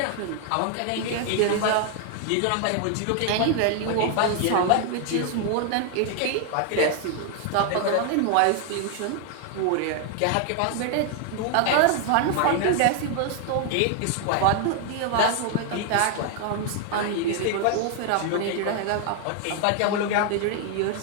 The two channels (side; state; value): both; different; correlation 0.00